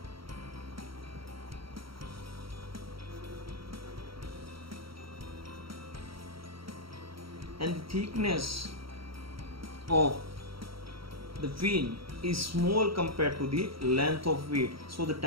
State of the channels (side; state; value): left; late; 0.75 ms